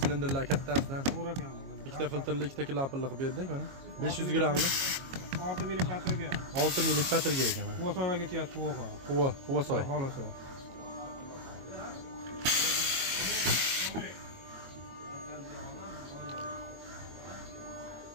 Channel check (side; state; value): left; late; 22 ms